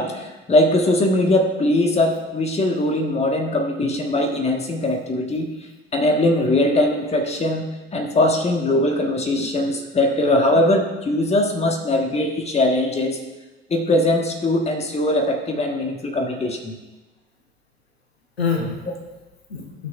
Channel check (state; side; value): normal; both; correlation 0.42